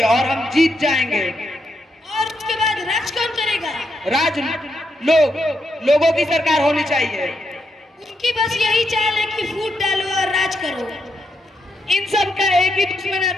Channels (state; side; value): normal; both; correlation 0.81